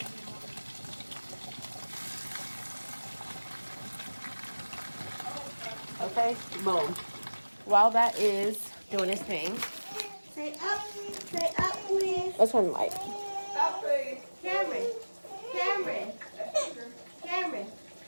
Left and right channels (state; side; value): inverted; both; correlation -1.00